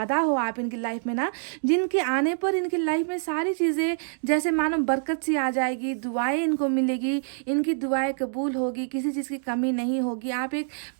हो आप इनकी लाइफ में ना, जिनके आने पर इनकी लाइफ में सारी चीज़ें जैसे मानो बरकत सी आ जाएगी, दुआएं इनको मिलेगी, इनकी दुआएं कबूल होगी, किसी चीज़ की कमी नहीं होगी। आप एक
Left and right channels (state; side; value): silent; left; digital silence